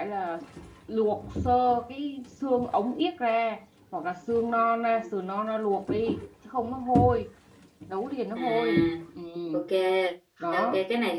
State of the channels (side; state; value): both; identical; correlation 1.00